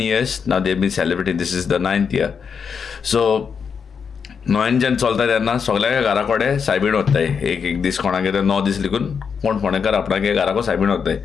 years now. They've been celebrating. This is the 9th year. So Noyan जेन्ना चलता तेन्ना सगळ्या घरा कडेन सायबीण वताय. एक दीस कोणागे 9 दीस लिखून कोण फोंडेकार आपणागे घराको सायबीण वताय.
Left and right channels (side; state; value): right; quieter; 6.4 dB